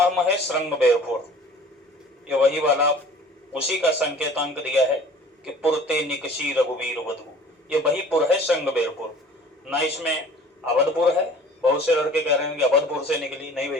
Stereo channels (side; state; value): both; normal; correlation 0.47